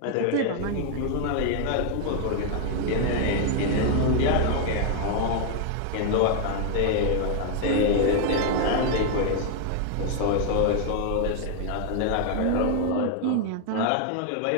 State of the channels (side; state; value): both; different; correlation 0.00